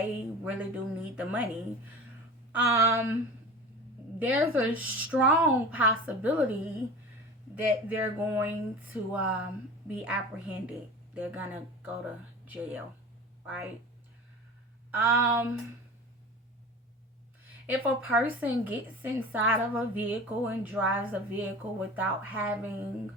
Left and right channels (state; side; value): normal; both; correlation 0.35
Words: really do need the money, um, there's a strong possibility that they're going to be apprehended. They're gonna go to jail, right? Um, if a person gets inside of a vehicle and drives a vehicle without having